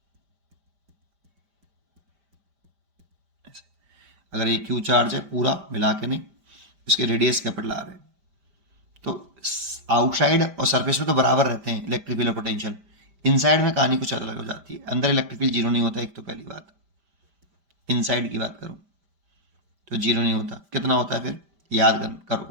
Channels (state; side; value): late; left; 5.0 ms